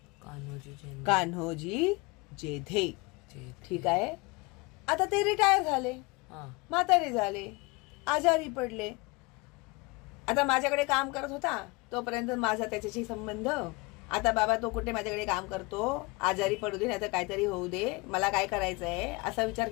कान्होजी जेधे. ठीक आहे. आता ते रिटायर झाले, म्हातारे झाले, आजारी पडले. आता माझ्याकडे काम करत होता तोपर्यंत माझा त्याच्याशी संबंध. आता बाबा तो कुठे माझ्याकडे काम करतो, आजारी पडू दे, नाही तर काहीतरी होऊ दे, मला काय करायचंय असा विचार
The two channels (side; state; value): right; quieter; 25.9 dB